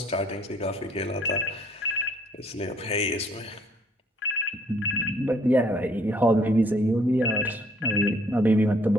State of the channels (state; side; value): normal; both; correlation 0.61